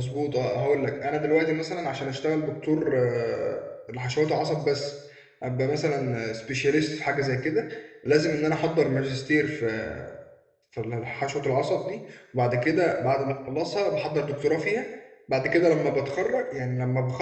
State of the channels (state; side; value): identical; both; correlation 1.00